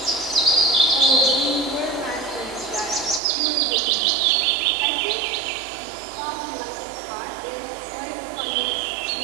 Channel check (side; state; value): left; drops out; at 3.2 s